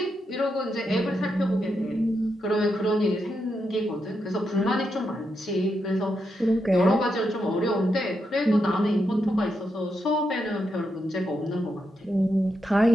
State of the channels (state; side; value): normal; both; correlation 0.83